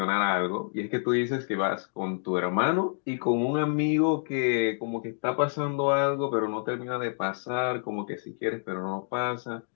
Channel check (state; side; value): silent; right; digital silence